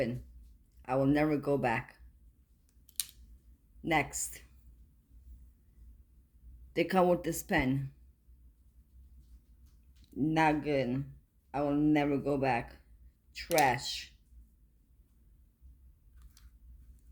I will never go back. Next, they come with this pen. Not good. I will never go back. Trash.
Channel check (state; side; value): identical; both; correlation 1.00